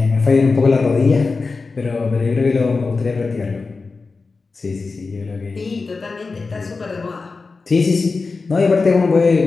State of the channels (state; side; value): quieter; right; 4.2 dB